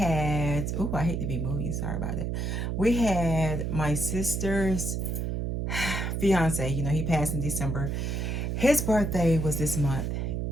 oh, I hate to be moving. Sorry about that. We had my sister's fiance. You know, he passed in December. His birthday was this month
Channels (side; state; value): right; noise; hum, 1 dB below the sound